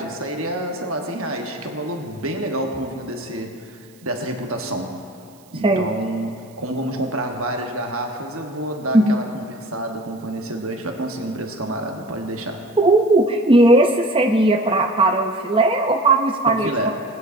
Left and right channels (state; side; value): noise; right; hiss, 29 dB below the sound